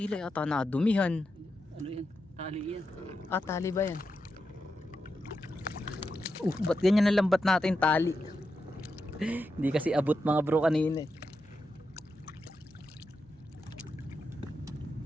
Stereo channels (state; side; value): noise; right; hum, 30 dB below the sound